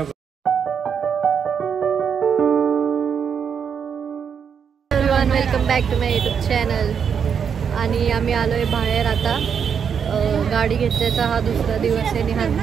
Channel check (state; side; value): quieter; left; 7.1 dB